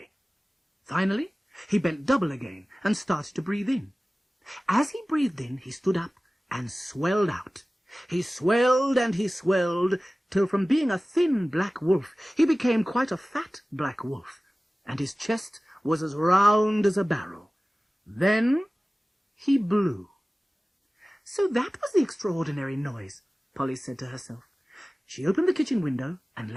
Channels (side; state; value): both; normal; correlation 0.97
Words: Finally, he bent double again and started to breathe in. As he breathed in, he stood up and swelled out. He swelled and he swelled, till from being a thin black wolf, he became quite a fat black wolf, and his chest was as round as a barrel. Then he blew. So that was the extraordinary noise, Polly said to herself. She opened the kitchen window and